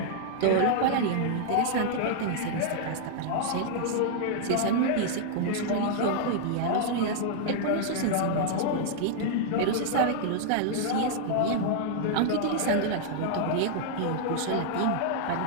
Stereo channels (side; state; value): both; different; correlation -0.01